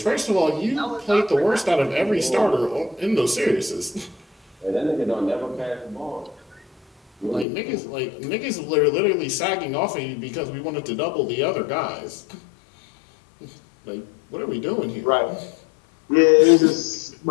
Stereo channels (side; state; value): right; drops out; at 7.5 s